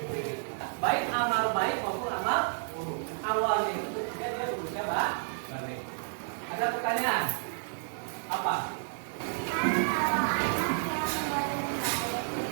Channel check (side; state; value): left; silent; digital silence